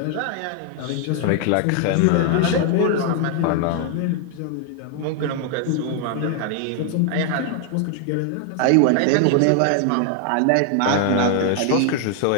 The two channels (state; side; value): different; both; correlation 0.00